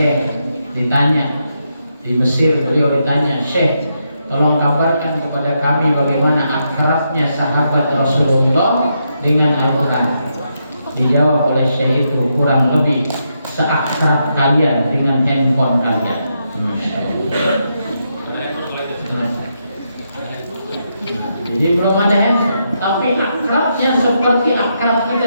ditanya di Mesir, beliau ditanya, "Syekh, tolong kabarkan kepada kami bagaimana akrabnya sahabat Rasulullah dengan Al-Quran." Dijawab oleh syekh itu, kurang lebih seakrab kalian dengan handphone kalian. Jadi belum ada handphone, tapi akrabnya seperti akrab kita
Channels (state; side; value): inverted; both; correlation -0.81